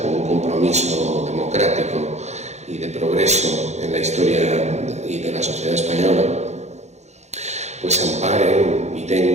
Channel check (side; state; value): left; late; 0.33 ms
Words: un compromiso democrático y de progreso en la historia y de la sociedad española, pues amparen y